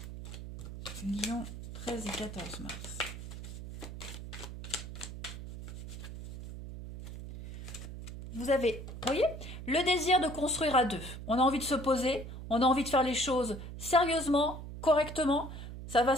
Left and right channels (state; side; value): noise; right; hum, 10 dB below the sound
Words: Lyon, 13 et 14 mars. Vous avez, vous voyez, le désir de construire à deux. On a envie de se poser, on a envie de faire les choses sérieusement, correctement. Ça va